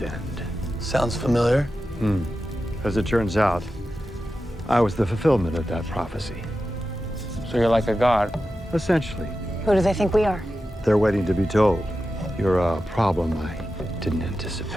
Sounds familiar. As it turns out, I was the fulfillment of that prophecy. So you're like a god? Essentially. who do they think we are? They're waiting to be told. You're a problem I didn't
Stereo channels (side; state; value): both; normal; correlation 0.92